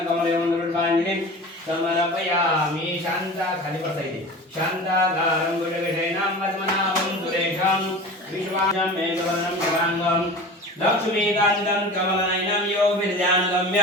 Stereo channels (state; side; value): normal; both; correlation 0.35